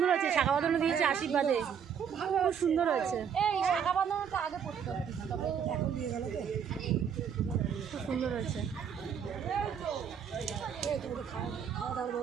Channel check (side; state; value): left; quieter; 7.7 dB